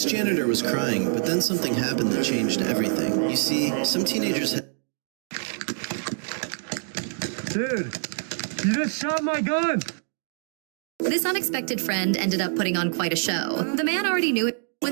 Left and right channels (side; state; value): left; silent; 61 dB below the other